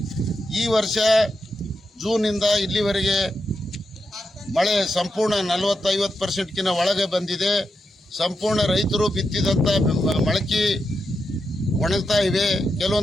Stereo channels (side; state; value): both; normal; correlation 0.86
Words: ಈ ವರ್ಷ ಜೂನಿಂದ ಇಲ್ಲಿವರೆಗೆ ಮಳೆ ಸಂಪೂರ್ಣ 40-50%ಕ್ಕಿಂತ ಒಳಗೆ ಬಂದಿದೆ. ಸಂಪೂರ್ಣ ರೈತರು ಬಿತ್ತಿದಂಥ ಮೊಳಕೆ ಒಣಗ್ತಾ ಇವೆ.